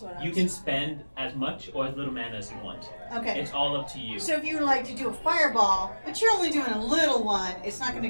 can spend as much or as little mana as you want. Okay. It's all up to you. So if you would like to do a fireball, but you're only doing a little one, it's not going to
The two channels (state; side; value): inverted; both; correlation -1.00